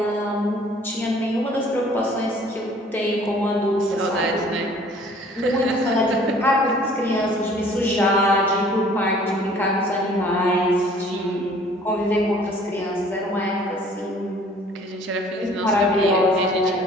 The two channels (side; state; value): both; normal; correlation 0.54